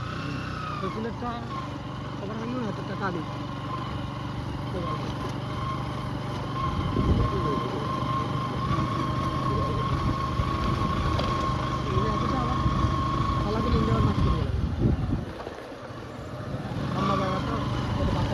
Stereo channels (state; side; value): identical; both; correlation 1.00